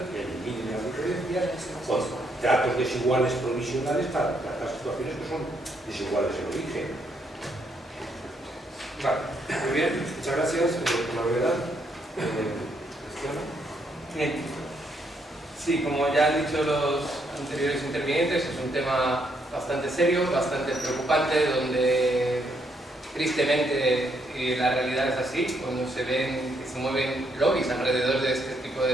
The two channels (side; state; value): both; normal; correlation 0.74